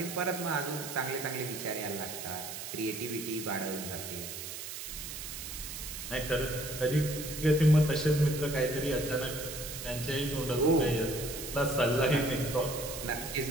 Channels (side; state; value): right; noise; hiss, 8 dB below the sound